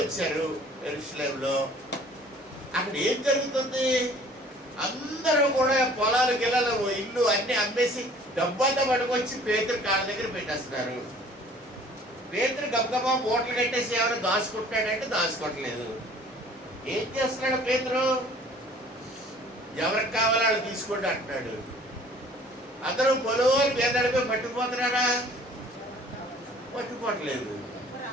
వచ్చారు యెరూషలేములో. అక్కడ ఏం జరుగుతుంది? అందరూ కూడా పొలాలు గిల్లలు ఇల్లు అన్ని అమ్మేసి డబ్బంతా పట్టుకొచ్చి పేతురు కాళ్ళ దగ్గర పెట్టేస్తున్నారు. పేతురు గబగబా మూటలు కట్టేసి ఎవరు దాచుకుంటాడంటే దాచుకోవట్లేదు. ఏం చేస్తున్నాడు పేతురు? ఎవరికి కావాలో వాళ్ళు తీసుకోండి అంటున్నాడు. అందరూ పొలవారు పేదడిపోయి పట్టుకుపోతున్నారా? పట్టుకోవట్లేదు.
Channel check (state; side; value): normal; both; correlation 0.52